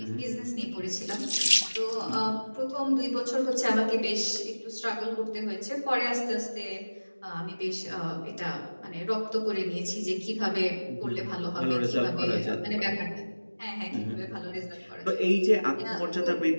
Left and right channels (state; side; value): inverted; both; correlation -1.00